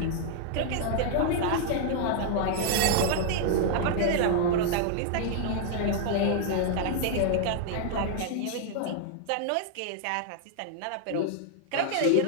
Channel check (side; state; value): both; different; correlation -0.01